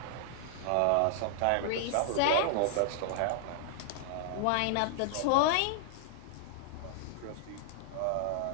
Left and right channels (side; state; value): both; different; correlation -0.01